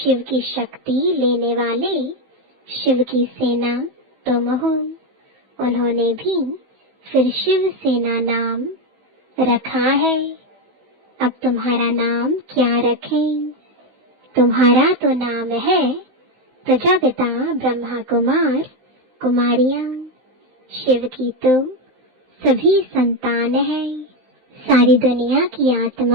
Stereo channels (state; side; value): late; left; 15 ms